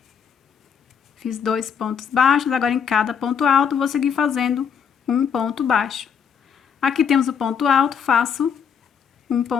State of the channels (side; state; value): right; quieter; 7.3 dB